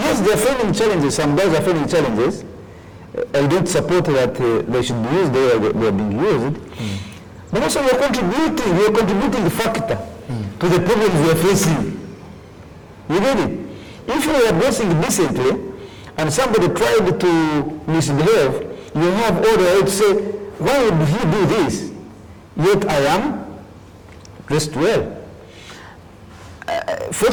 they are facing challenges. Some guys are facing challenges. I don't support that they should be used the way they are being used. But also we are contributing the factor to the problems we are facing. You get it? If you are dressing decently and somebody tried to misbehave, you have all the right to say, why would he do this? Yet I am dressed well.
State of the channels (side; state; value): both; identical; correlation 1.00